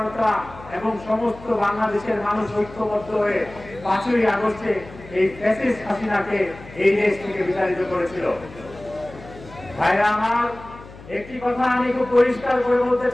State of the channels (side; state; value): left; noise; hum, 18 dB below the sound